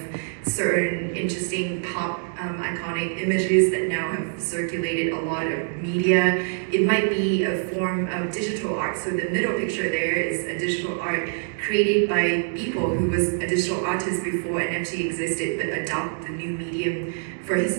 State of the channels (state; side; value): silent; left; 62 dB below the other